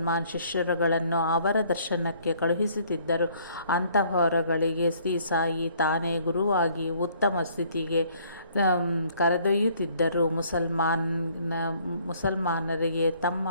ಶಿಷ್ಯರುಗಳನ್ನು ಅವರ ದರ್ಶನಕ್ಕೆ ಕಳುಹಿಸುತ್ತಿದ್ದರು. ಅಂತಹವರುಗಳಿಗೆ ಶ್ರೀ ಸಾಯಿ ತಾನೇ ಗುರುವಾಗಿ ಉತ್ತಮ ಸ್ಥಿತಿಗೆ ಕರೆದೊಯ್ಯುತ್ತಿದ್ದರು. ಮುಸಲ್ಮಾನರಿಗೆ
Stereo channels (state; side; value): inverted; both; correlation -0.61